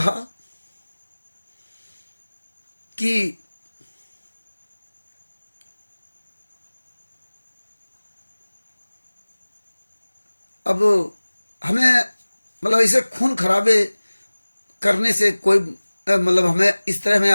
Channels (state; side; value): inverted; both; correlation -1.00